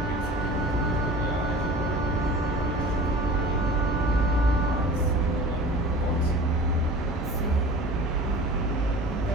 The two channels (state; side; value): normal; both; correlation 0.40